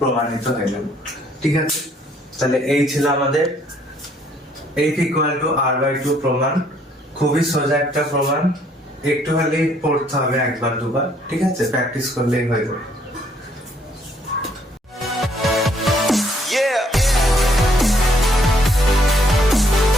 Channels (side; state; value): both; normal; correlation 0.66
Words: হয়ে গেল। ঠিক আছে, তাহলে এই ছিল আমাদের f = r/2 প্রমাণ। খুবই সোজা একটা প্রমাণ, একটু হলেই পড়তে হবে একবার দুবার। ঠিক আছে, প্র্যাকটিস করলেই হয়ে যাবে।